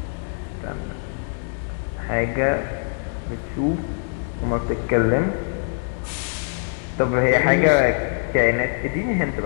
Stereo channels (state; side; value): silent; right; digital silence